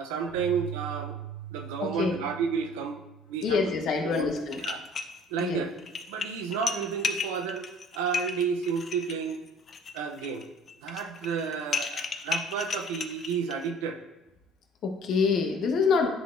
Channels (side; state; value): both; normal; correlation 0.50